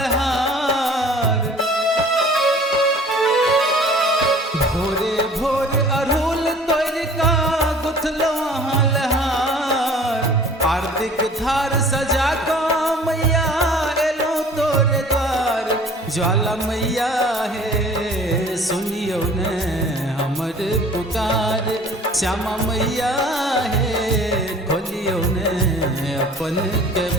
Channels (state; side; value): normal; both; correlation 0.49